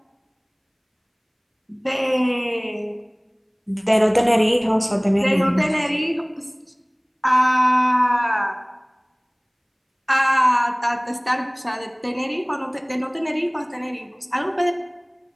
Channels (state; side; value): identical; both; correlation 1.00